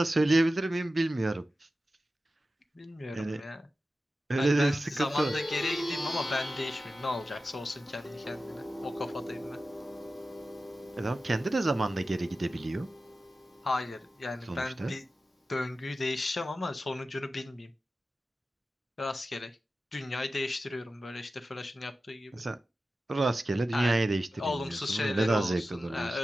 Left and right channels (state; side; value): normal; both; correlation 0.94